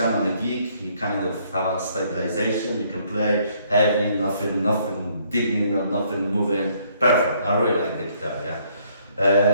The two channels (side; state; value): both; inverted; correlation -0.66